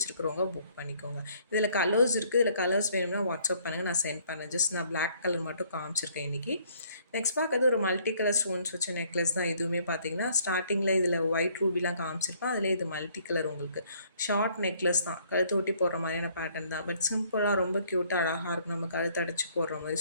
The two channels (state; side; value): inverted; both; correlation -0.63